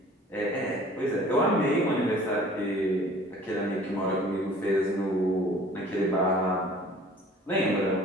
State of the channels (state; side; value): normal; both; correlation 0.49